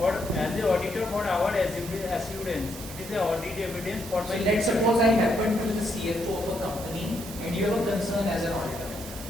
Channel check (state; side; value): normal; both; correlation 0.76